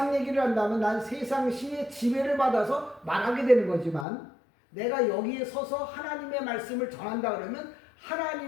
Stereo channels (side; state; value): right; drops out; at 4.0 s